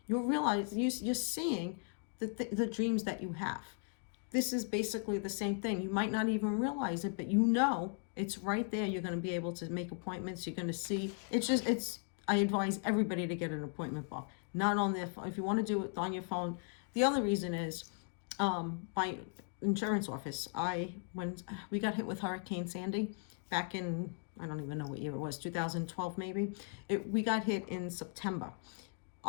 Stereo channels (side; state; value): right; quieter; 39.5 dB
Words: you'll realize you're seeing the dreams that you have. This is basically the same thing. You might not even realize it, but you know it's right there. You're going to be able to make appointments. You're going to see. I advise everybody to get an appointment book, not on their phone. If you want to do it on your phone. The other reason is, my insurance office, when we got hit with Hurricane Sandy back in, I don't even know what year it was, 2012 maybe. We got hit in September.